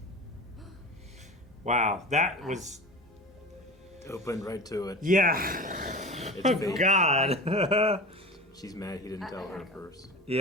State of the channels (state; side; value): normal; both; correlation 0.32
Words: Wow, that was. Opened right to it. Yeah. It's Oh, fake. God. She's mad he didn't tell her at first.